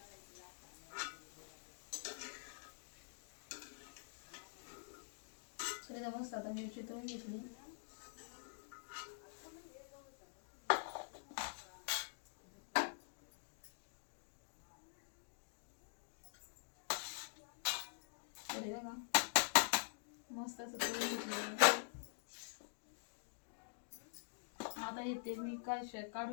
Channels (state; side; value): silent; right; digital silence